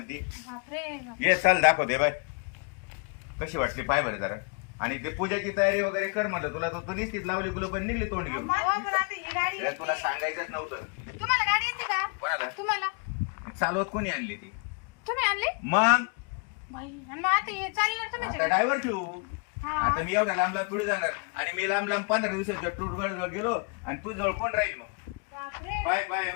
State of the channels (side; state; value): right; quieter; 36.3 dB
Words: बापरे. ये चल दाखवते बाय, कशी वाटली पाय बरं जरा. आणि ते पूजाची तयारी वगैरे कर म्हणलं तुला, तर तू निश्चित लावली गुलो पण निघली तोंड घेऊन. हो, पण आता ही गाडी अरे तुला येते. सांगायचंच नव्हतं. तुम्हाला गाडी येते का? कोणाला? तुम्हाला. चालवत कोणी आणली ती? तुम्ही आणली? मग बाई, आणि मग आता हे चालणार तुम्ही आता ड्रायव्हर ठेवू. हा. आता मी एवढ्या लांब लांब पुढे जाणार आणि मी लांब लांब 15 दिवसाच्या टूर गेलो आणि तू जवळ कोण राहील मग? बापरे. Bye bye